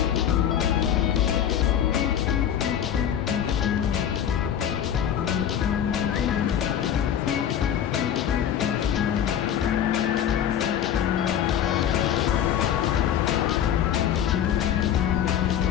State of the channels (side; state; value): right; quieter; 9.7 dB